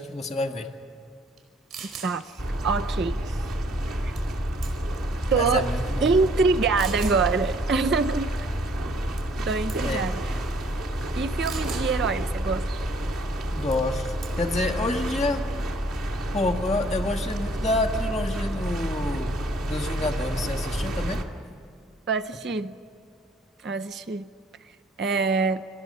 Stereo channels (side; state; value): both; normal; correlation 0.60